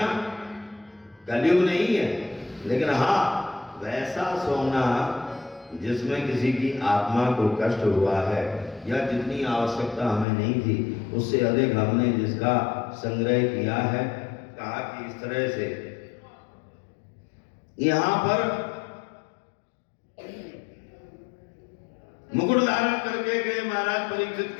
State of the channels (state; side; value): drops out; right; at 10.2 s